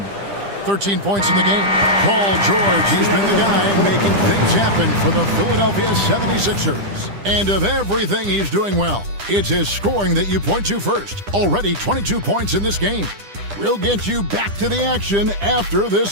13 points in the game. Paul George, he's been the guy making things happen for the Philadelphia 76ers. And of everything he's doing well, it's his scoring that you point to first. Already 22 points in this game. We'll get you back to the action after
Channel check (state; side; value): late; left; 10 ms